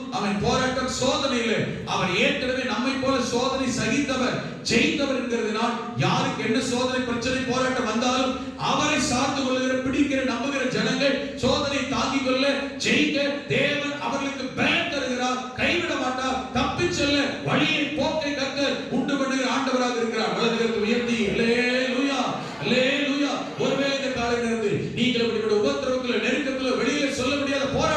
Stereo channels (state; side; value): identical; both; correlation 1.00